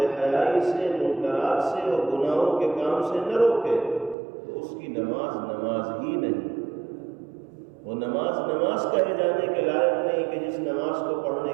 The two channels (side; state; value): left; drops out; at 4.2 s